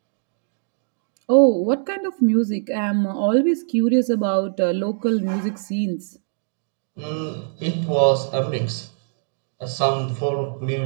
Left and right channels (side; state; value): left; silent; digital silence